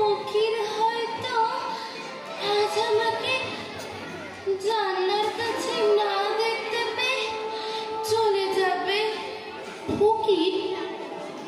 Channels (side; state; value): both; identical; correlation 1.00